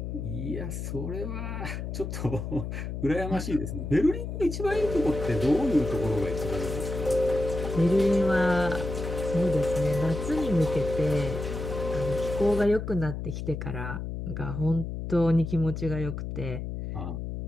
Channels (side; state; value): left; noise; hum, 5 dB below the sound